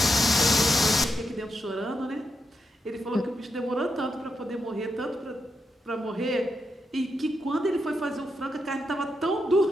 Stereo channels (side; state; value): both; normal; correlation 0.84